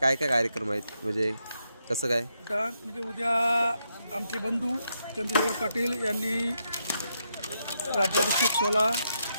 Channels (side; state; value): both; inverted; correlation -0.80